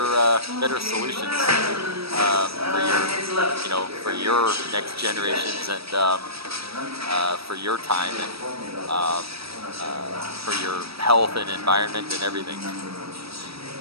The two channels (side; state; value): left; late; 0.77 ms